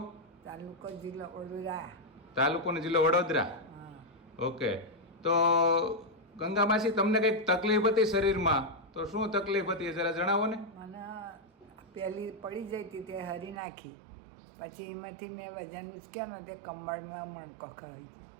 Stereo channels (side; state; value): left; drops out; at 13.6 s